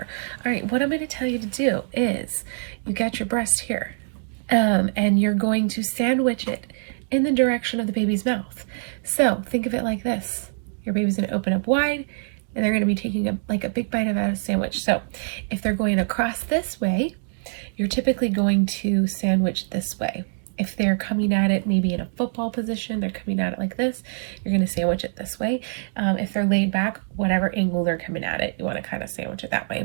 All right, what I'm going to tell you to do is you got your breast here and you're going to sandwich it in the direction of the baby's mouth. So think of it like this. Your baby's going to open up wide and they're going to be taking a big bite of a sandwich. So if they're going across this way, you're typically going to sandwich this way. If they're coming at it maybe in a football position, they're coming at it like this, you're going to sandwich it this way. If they're laid back, whatever angle they're coming at it, you want to kind of sandwich it that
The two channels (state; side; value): silent; left; digital silence